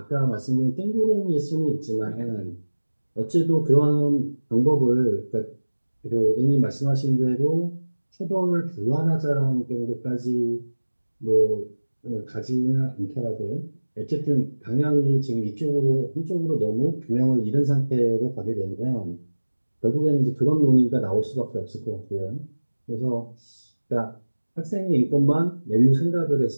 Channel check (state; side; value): inverted; both; correlation -1.00